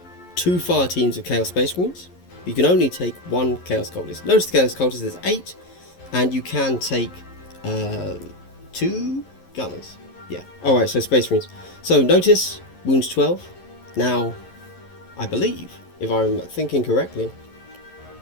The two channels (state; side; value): late; right; 11 ms